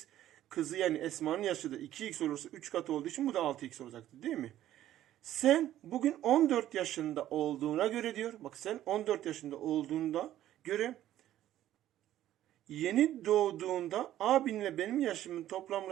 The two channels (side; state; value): left; quieter; 12.8 dB